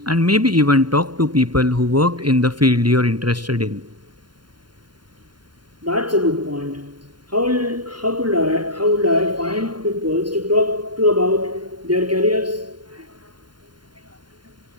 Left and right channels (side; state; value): left; late; 0.71 ms